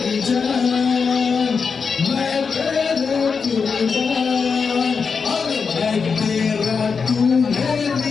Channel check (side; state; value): right; quieter; 5.5 dB